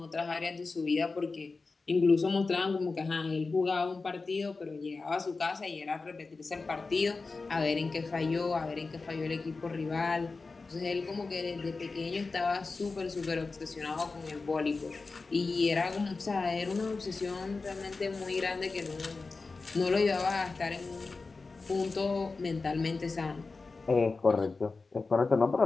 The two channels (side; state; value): right; quieter; 4.0 dB